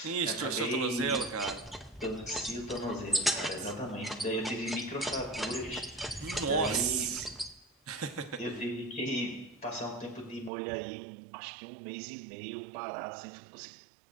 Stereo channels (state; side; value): drops out; left; at 10.5 s